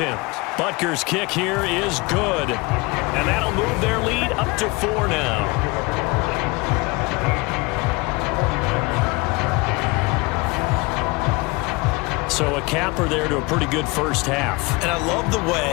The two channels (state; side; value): quieter; right; 25.6 dB